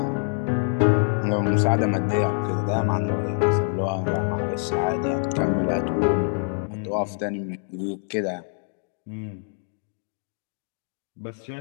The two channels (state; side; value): silent; right; 62 dB below the other